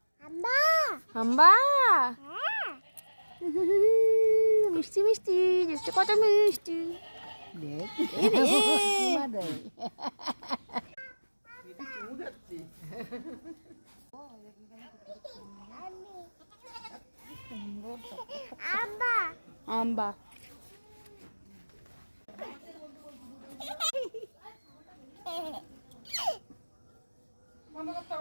হাম্বা। হাম্বা। হ্যাঁ। মিষ্টি মিষ্টি দেখতে কত মিষ্টি। হাম্বা। আম্বা।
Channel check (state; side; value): inverted; both; correlation -1.00